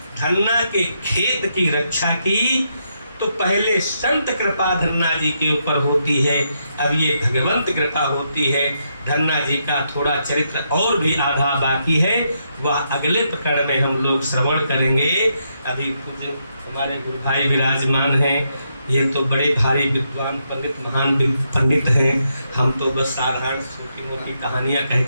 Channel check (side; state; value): both; inverted; correlation -0.80